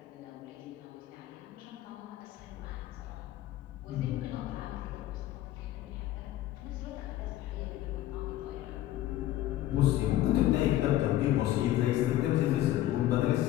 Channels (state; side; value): quieter; right; 14.0 dB